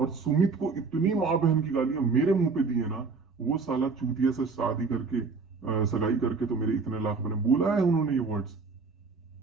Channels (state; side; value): quieter; left; 4.6 dB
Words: सुमित को इतनी माँ बहन की गालियां मेरे मुंह पे दी है ना, वो साला चूतिया से शादी करके, सगाई करके तो मेरे इतने लाख बने, बोला है उन्होंने ये वर्ड्स